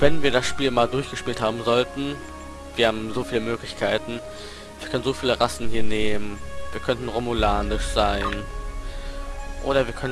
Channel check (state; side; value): identical; both; correlation 1.00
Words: wir das Spiel mal durchgespielt haben sollten, wir haben so viele Möglichkeiten, wir können so viele Rassen hier nehmen, wir könnten romulanisch sein oder wir